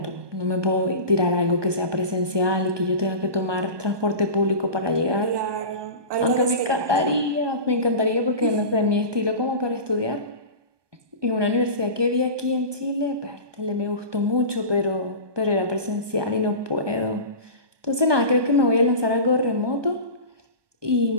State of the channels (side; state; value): left; late; 1.2 ms